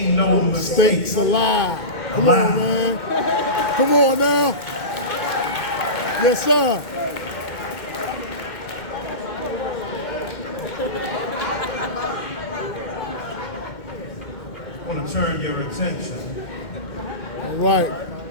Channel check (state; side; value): late; right; 2.2 ms